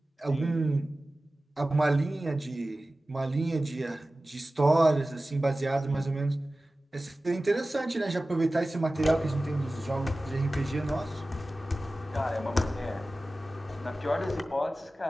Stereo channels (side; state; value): both; normal; correlation 0.96